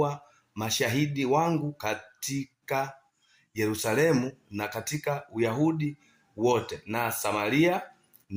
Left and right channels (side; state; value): both; identical; correlation 1.00